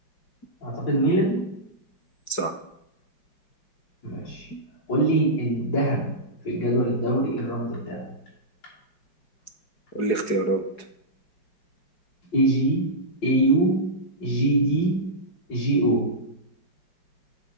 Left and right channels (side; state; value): right; late; 4.8 ms